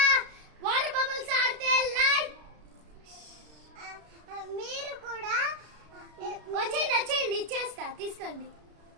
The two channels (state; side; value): late; left; 33 ms